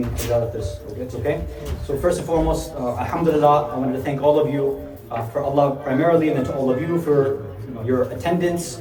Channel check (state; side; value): identical; both; correlation 1.00